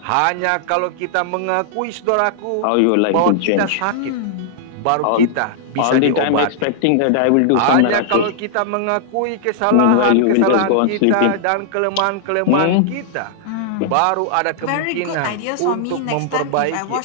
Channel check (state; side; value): different; both; correlation -0.01